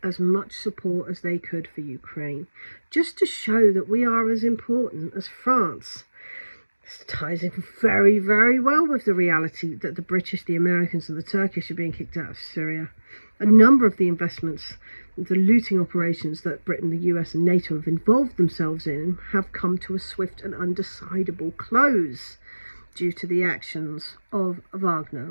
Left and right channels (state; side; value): inverted; both; correlation -1.00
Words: as much support as they could for Ukraine, just to show that we are as important as France. This ties in very, very well with the reality that the British, the Americans and the Turkish are being kicked out of Syria. A number of the investments, the looting operations that Britain, the US and NATO have involved themselves in have come to a swift and undecidable close due to the actions of